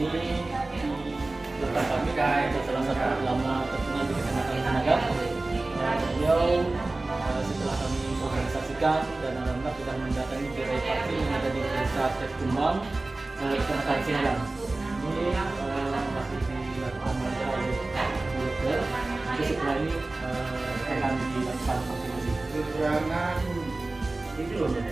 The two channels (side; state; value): left; quieter; 3.1 dB